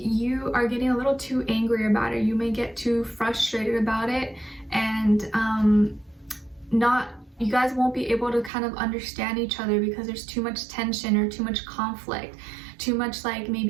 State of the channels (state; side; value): drops out; left; at 8.5 s